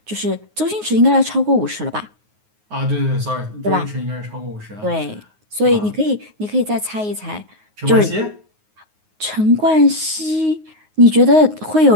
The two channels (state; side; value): late; left; 9.5 ms